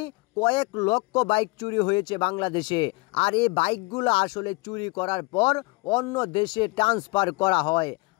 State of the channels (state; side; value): quieter; right; 25.9 dB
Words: কয়েক লক্ষ বাইক চুরি হয়েছে বাংলাদেশে, আর এই বাইকগুলো আসলে চুরি করার পর অন্য দেশে ট্রান্সফার করা হয়,